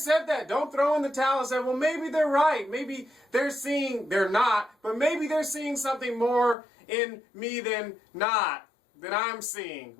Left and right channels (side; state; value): right; drops out; at 6.6 s